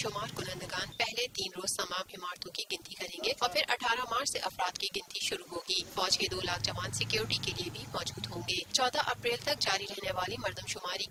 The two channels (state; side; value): identical; both; correlation 1.00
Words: کنندگان پہلے 3 روز تمام عمارتوں کی گنتی کریں گے اور پھر 18 مارچ سے افراد کی گنتی شروع ہوگی۔ فوج کے 2 لاکھ جوان سیکیورٹی کے لیے بھی موجود ہوں گے۔ 14 اپریل تک جاری رہنے والی مردم شماری